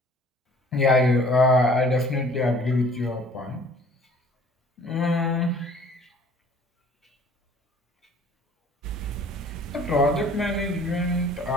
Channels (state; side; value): normal; both; correlation 0.53